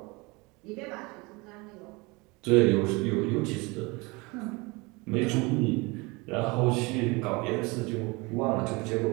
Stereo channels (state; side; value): quieter; left; 25.9 dB